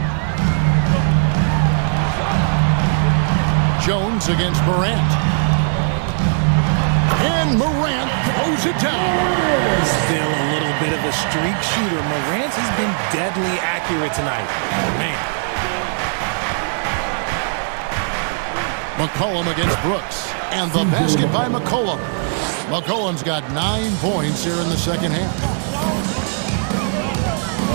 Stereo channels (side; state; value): left; silent; digital silence